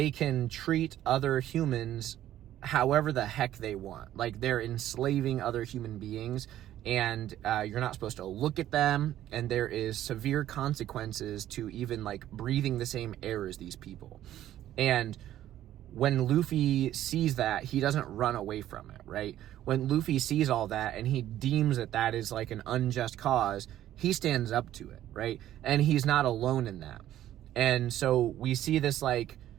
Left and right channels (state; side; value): quieter; left; 12.6 dB